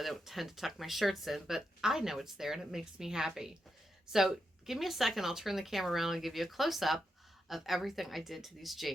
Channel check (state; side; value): normal; both; correlation 0.85